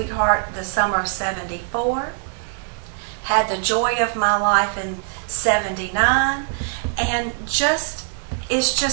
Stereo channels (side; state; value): left; silent; digital silence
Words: the summer of '74. Had the joy of my life in '79. And it's